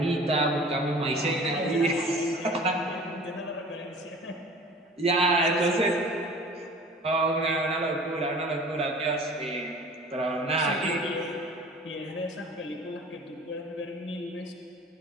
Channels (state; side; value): normal; both; correlation 0.44